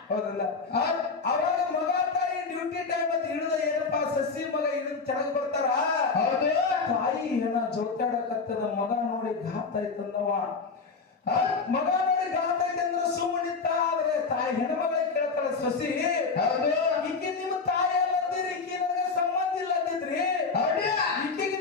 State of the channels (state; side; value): quieter; right; 4.6 dB